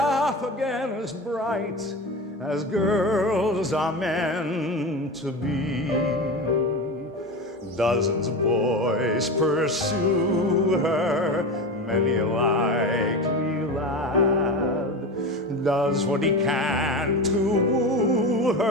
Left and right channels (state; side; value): normal; both; correlation 0.25